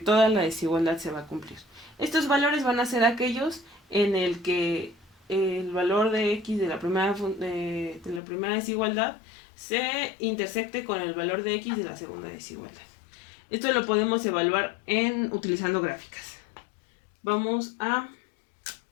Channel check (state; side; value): drops out; right; at 8.2 s